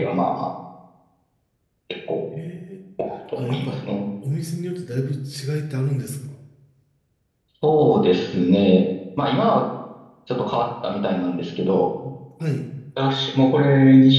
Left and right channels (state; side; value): identical; both; correlation 1.00